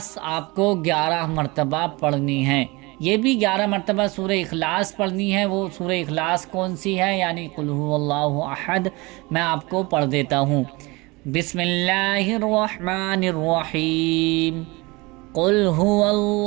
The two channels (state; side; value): quieter; left; 24.6 dB